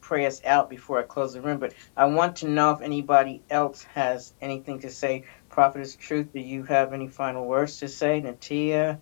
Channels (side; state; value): right; silent; digital silence